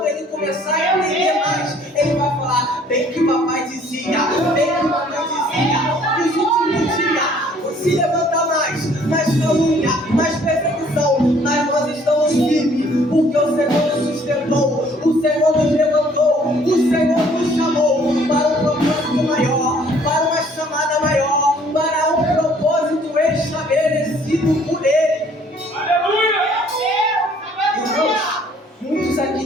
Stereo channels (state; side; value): normal; both; correlation 0.59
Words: ele começar a entender mais, ele vai falar: bem que papai dizia, bem que mamãe dizia, nos últimos dias se levanta mais calúnia, mais perseguição, mas nós estamos firmes, porque o Senhor nos sustentou, o aqui